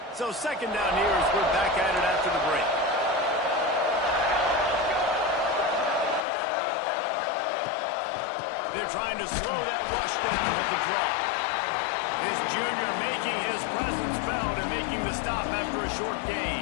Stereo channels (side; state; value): right; drops out; at 6.2 s